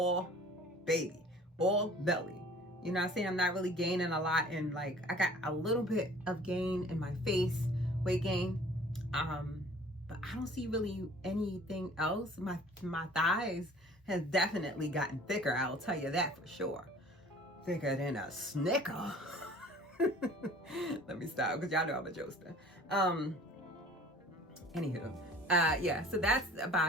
baby, all belly. You know what I'm saying? I'm not really gaining a lot, and like I got a little bit of gain in my face, weight gain. But I don't see really anything else. My thighs has definitely gotten thicker, I'll tell you that for sure. Thicker than a Snicker. Let me stop, because y'all know I'm a jokester. Anywho, yeah, so that's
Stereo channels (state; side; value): normal; both; correlation 0.49